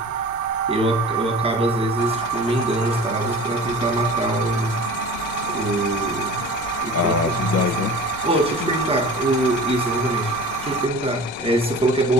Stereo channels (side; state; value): left; noise; rumble, 21 dB below the sound